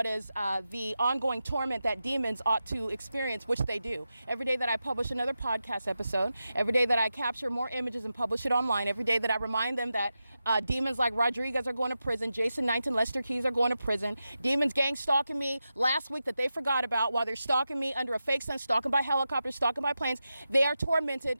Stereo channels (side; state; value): both; inverted; correlation -0.90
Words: is the ongoing torment that demons ought to experience, which they do. Every day that I publish another podcast episode, every day that I capture more images and publish it online, every day that I remind them that demons like Rodriguez are going to prison, Jason Knight and Lester Keys are going to prison, demons gang stalking me last week that they forgot about while they're stalking me under a fake sun, stalking by helicopters, stalking by planes. They are tormented.